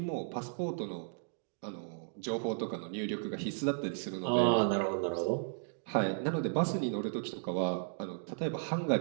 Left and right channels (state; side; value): silent; left; digital silence